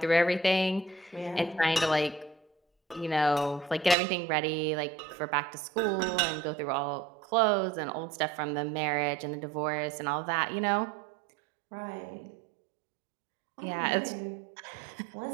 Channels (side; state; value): left; drops out; at 4.0 s